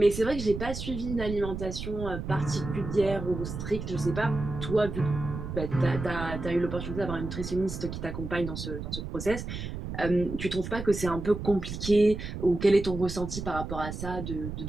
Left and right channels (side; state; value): right; noise; rumble, 7 dB below the sound